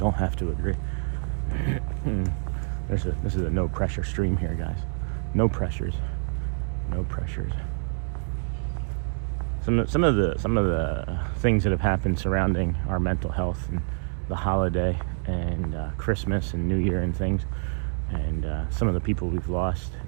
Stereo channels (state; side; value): silent; left; digital silence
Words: have to agree. This is a no pressure stream here, guys. No pressures. No pressures. Some of the things that have happened surrounding our mental health and the holiday and Christmas and New Year and things, and some of the people we've lost,